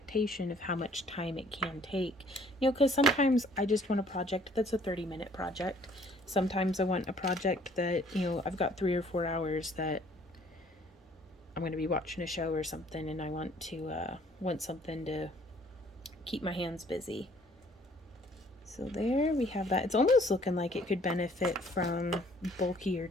of how much time it can take. You know, because sometimes I just want a project that's a 30-minute project. Sometimes I want a project that, you know, I've got 3 or 4 hours that I'm going to be watching a show or something, and I want to want something to keep my hands busy. So there we have that. It's almost looking like it could benefit from bulkier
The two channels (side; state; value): both; normal; correlation 0.59